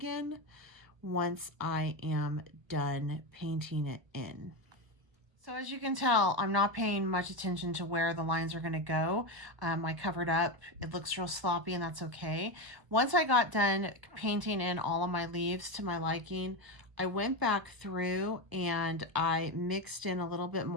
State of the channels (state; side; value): late; left; 1.4 ms